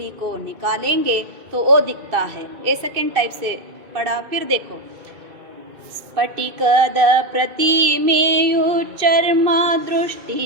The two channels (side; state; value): left; late; 2.6 ms